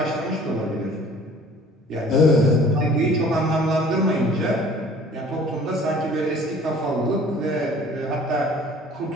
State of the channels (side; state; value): both; normal; correlation 0.51